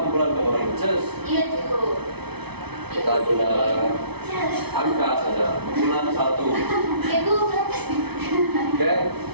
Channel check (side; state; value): left; late; 0.98 ms